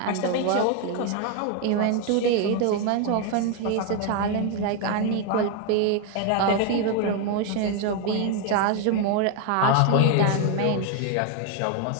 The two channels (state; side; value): different; both; correlation 0.01